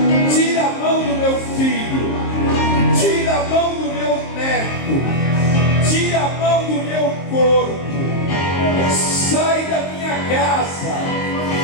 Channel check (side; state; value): right; late; 23 ms